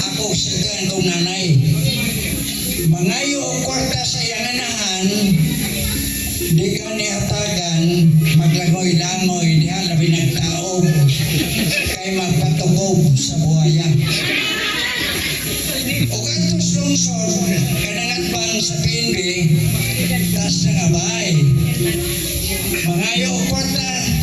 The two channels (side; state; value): both; identical; correlation 1.00